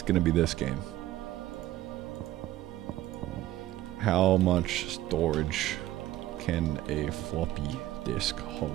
gonna be this game. How much storage can a floppy disk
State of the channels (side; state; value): left; quieter; 14.8 dB